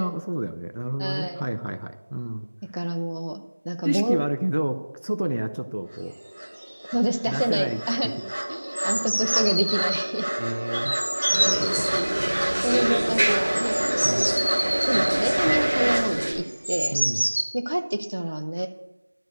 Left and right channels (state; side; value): inverted; both; correlation -1.00